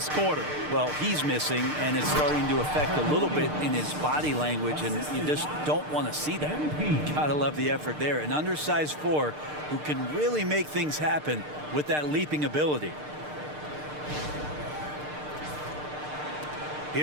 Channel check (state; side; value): late; left; 6.6 ms